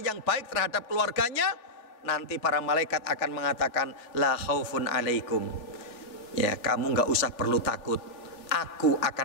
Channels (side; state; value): right; late; 3.4 ms